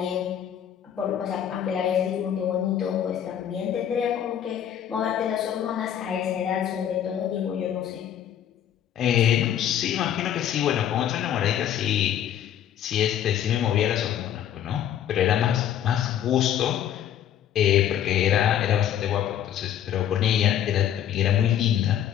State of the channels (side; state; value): right; quieter; 10.2 dB